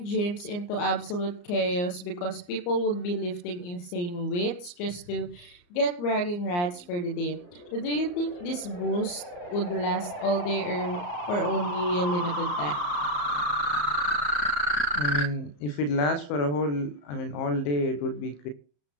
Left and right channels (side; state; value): right; late; 34 ms